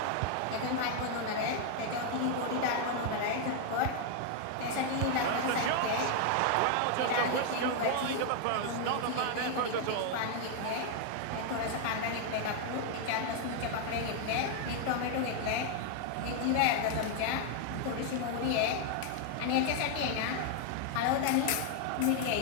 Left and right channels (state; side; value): different; both; correlation 0.00